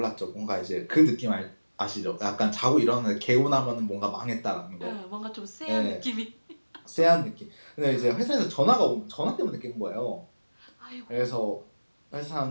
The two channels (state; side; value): inverted; both; correlation -1.00